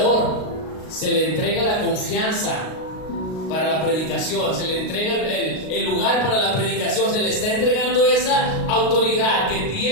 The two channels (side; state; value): right; late; 38 ms